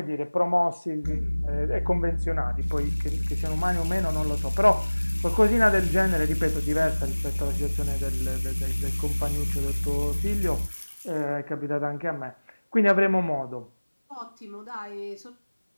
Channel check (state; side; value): inverted; both; correlation -1.00